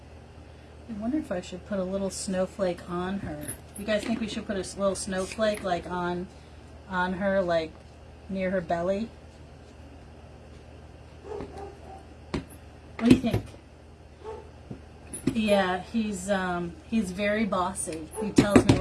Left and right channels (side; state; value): both; identical; correlation 1.00